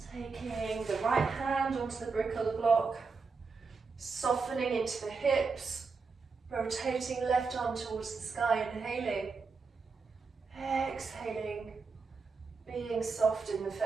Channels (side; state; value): left; quieter; 4.7 dB